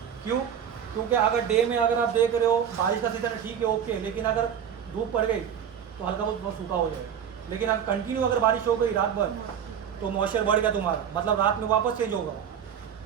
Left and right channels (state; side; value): quieter; left; 8.4 dB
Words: क्यों? क्योंकि अगर डे में अगर आप देख रहे हो बारिश का सीजन है, ठीक है ओके, लेकिन अगर धूप पड़ गई तो हल्का बहुत सूखा हो जाएगा। लेकिन अगर कंटिन्यू अगर बारिश हो गई रात भर, तो मॉइस्चर बढ़ गया तुम्हारा, मतलब रात में वापस चेंज होगा।